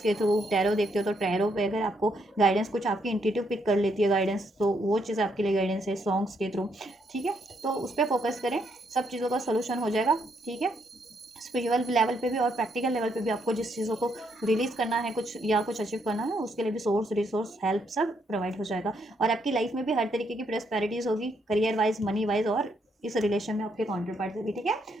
के थ्रू, टैरो देखते हो तो टैरो पे अगर आपको गाइडेंस, कुछ आपकी इंट्यूटिव पिक कर लेती है गाइडेंस, तो वो चीज़ आपके लिए गाइडेंस है, सॉन्ग्स के थ्रू, ठीक है? तो उस पर फोकस करें, सब चीज़ों का सोल्यूशन हो जाएगा, ठीक है? स्पिरिचुअल लेवल पे भी और प्रैक्टिकल लेवल पे भी आपको जिस चीज़ों को रिलीज़ करना है, कुछ या कुछ अचीव करना है, उसके लिए भी सोर्स, रिसोर्स, हेल्प सब प्रोवाइड हो जाएगा। और आपकी लाइफ में भी हर तरीके की प्रॉस्पेरिटीज़ होगी, करियर वाइज, मनी वाइज, और इस रिलेशन में आपके काउंटर पार्ट से भी, ठीक है?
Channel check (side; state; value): both; normal; correlation 0.75